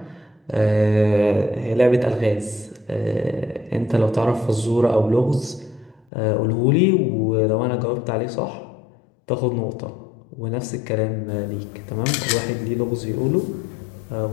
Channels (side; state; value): right; drops out; at 6.1 s